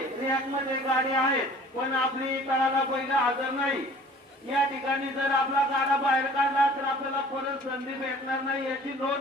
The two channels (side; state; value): both; normal; correlation 0.49